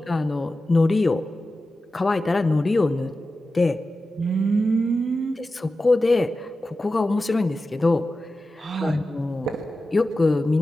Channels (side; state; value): both; normal; correlation 0.93